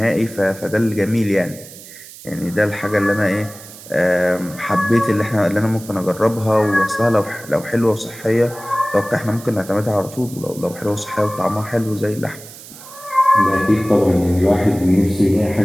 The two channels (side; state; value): right; noise; hiss, 17 dB below the sound